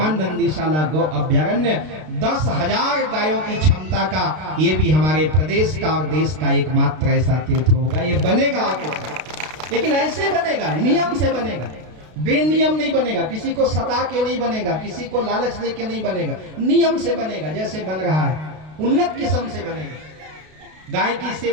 नंदीशाला गौ अभ्यारण्य 10,000 गायों की क्षमता का, ये भी हमारे प्रदेश का और देश का एकमात्र ऐसा तीर्थ होगा। ये बनेगा आगे, लेकिन ऐसे बनेगा, नियम से बनेगा, बेनियम नहीं बनेगा। किसी को सता के नहीं बनेगा, किसी को लालच दे के नहीं बनेगा, नियम से बनेगा। जैसे बन रहा है उन्नत किस्म से बनेगा। गाय की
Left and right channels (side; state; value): left; late; 32 ms